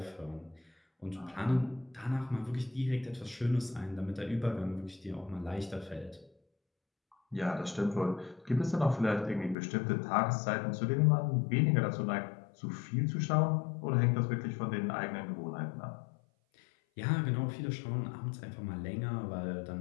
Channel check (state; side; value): drops out; right; at 9.6 s